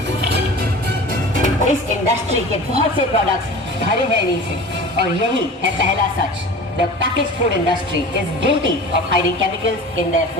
इस इंडस्ट्री के बहुत से प्रोडक्ट्स भरे हैं इन्हीं से, और यही है पहला सच। The packaged food industry is guilty of hiding chemicals in their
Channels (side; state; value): both; normal; correlation 0.37